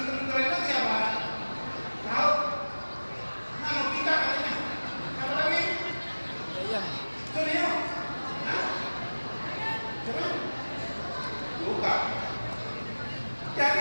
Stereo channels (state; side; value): inverted; both; correlation -1.00